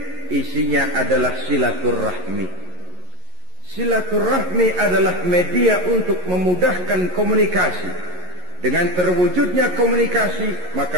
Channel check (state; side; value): late; left; 11 ms